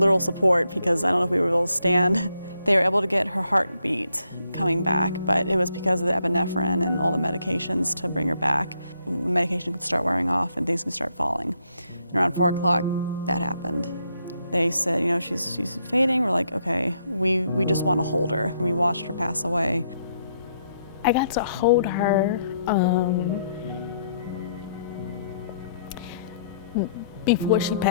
support, because I don't know if we were able to stand. They were able to get her heartbeat coming back, but it was because of the epinephrine and all the medications to bring her back. Medication could start wearing off and things could start falling. And around 4 o'clock, that happened. They said, you know, she's fading. We're like, okay, we just want to hold her. And we watched her pass away. I got to hold her before she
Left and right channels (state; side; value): inverted; both; correlation -0.74